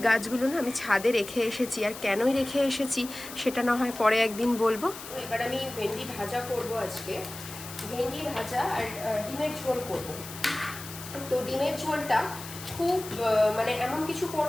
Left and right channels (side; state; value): left; noise; hiss, 12 dB below the sound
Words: গাছগুলো না আমি ছাদে রেখে এসেছি। আর কেনই রেখে এসেছি সেটা না হয় পরে একদিন বলবো। এবার আমি ভেন্ডি ভাজা করব আজকে, ভেন্ডি ভাজা আর ডিমের ঝোল করব। তো ডিমের ঝোলটা খুব মানে এমন কিছু